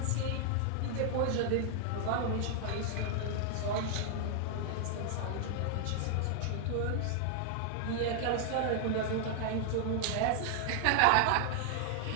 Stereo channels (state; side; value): different; both; correlation 0.00